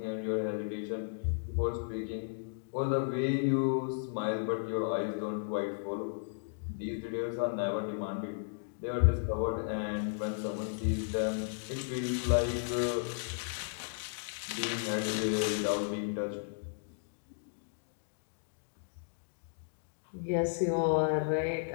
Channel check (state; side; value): silent; right; digital silence